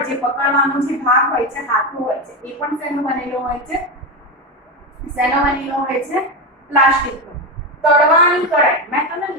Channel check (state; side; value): normal; both; correlation 0.14